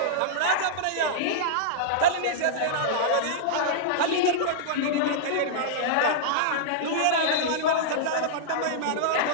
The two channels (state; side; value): different; both; correlation -0.02